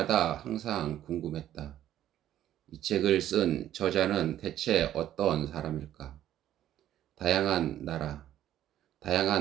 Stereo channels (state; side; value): quieter; left; 12.1 dB